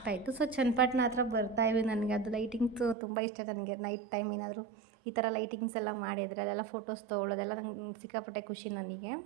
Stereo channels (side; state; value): left; drops out; at 3.0 s